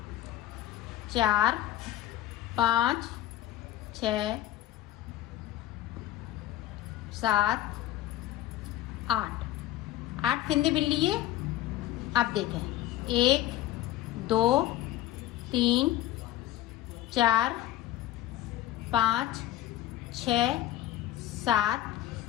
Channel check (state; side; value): quieter; right; 14.2 dB